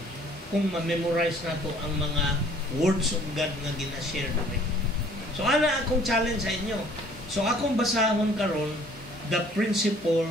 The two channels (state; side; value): normal; both; correlation 0.56